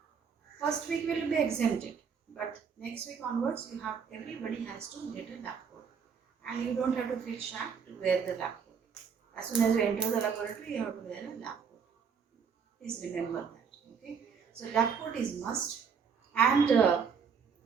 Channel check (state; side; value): quieter; left; 6.3 dB